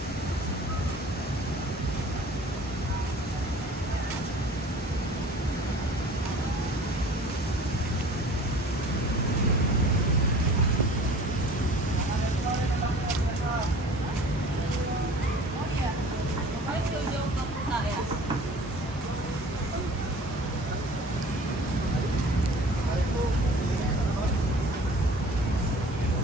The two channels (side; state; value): both; normal; correlation 0.46